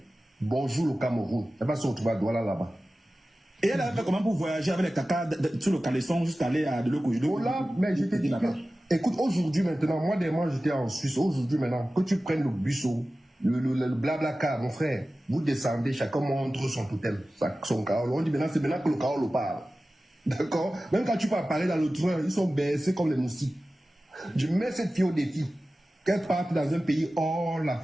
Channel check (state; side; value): normal; both; correlation 0.95